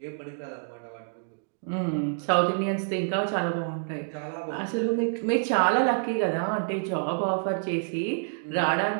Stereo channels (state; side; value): silent; left; digital silence